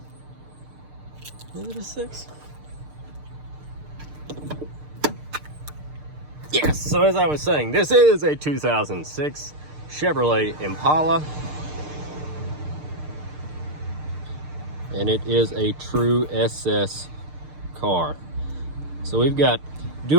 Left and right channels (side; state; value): left; late; 6.6 ms